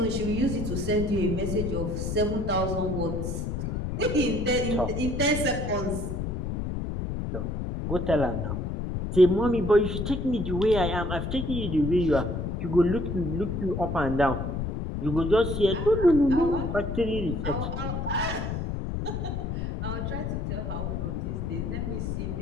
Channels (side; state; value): left; noise; rumble, 3 dB below the sound